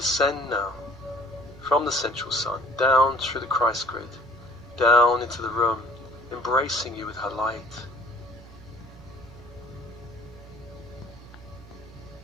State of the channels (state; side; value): noise; right; hum, 19 dB below the sound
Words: now from the central sun, down through the Christ grid, down into the room, embracing you with her light.